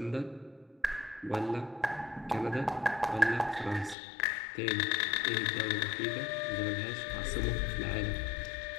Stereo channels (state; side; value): drops out; right; at 4.0 s